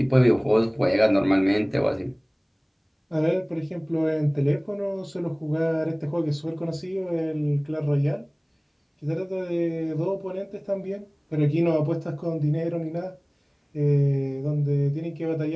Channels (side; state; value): both; identical; correlation 1.00